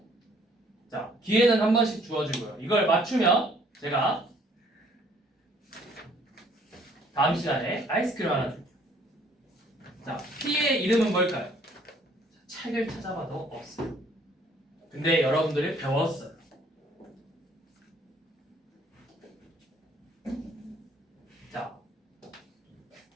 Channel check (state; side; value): normal; both; correlation 0.61